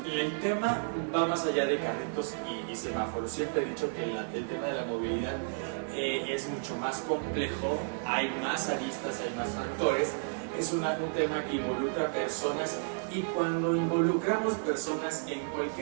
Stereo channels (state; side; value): silent; left; digital silence